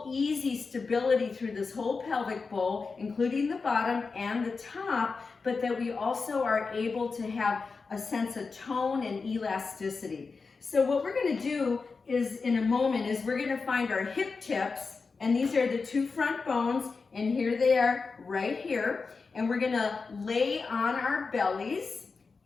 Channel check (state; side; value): quieter; right; 4.6 dB